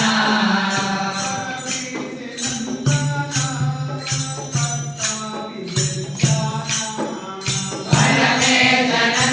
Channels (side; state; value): both; identical; correlation 1.00